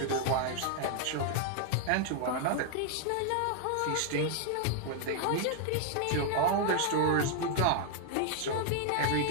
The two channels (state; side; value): different; both; correlation 0.00